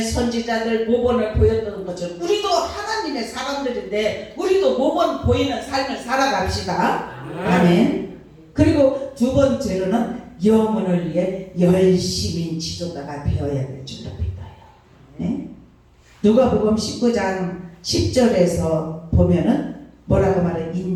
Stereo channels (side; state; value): both; identical; correlation 1.00